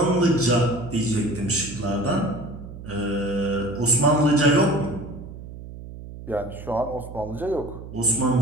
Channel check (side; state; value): right; noise; hum, 13 dB below the sound